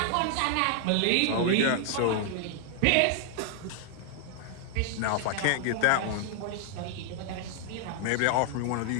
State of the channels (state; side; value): different; both; correlation 0.00